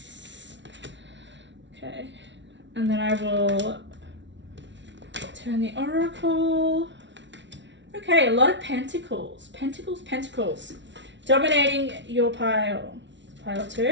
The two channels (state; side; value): late; left; 0.53 ms